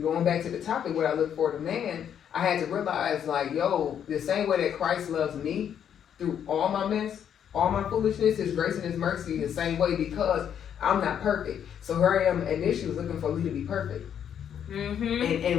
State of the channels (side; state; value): right; quieter; 8.9 dB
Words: going back to the topic, what I look for in a man, I had to realize like, yo, the same way that Christ loves me through all my mess, all my foolishness, His grace and His mercy, the same way, because I'm not perfect. So here I am, initially was looking for Lee to be perfect. And